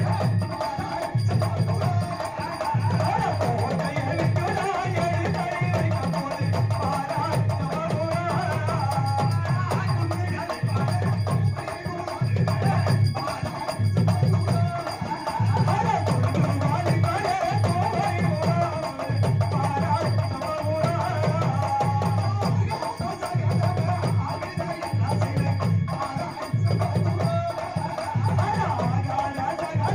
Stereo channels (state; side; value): noise; right; rumble, 27 dB below the sound